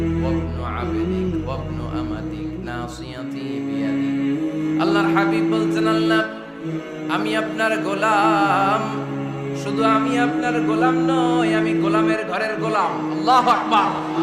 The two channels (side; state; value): both; identical; correlation 1.00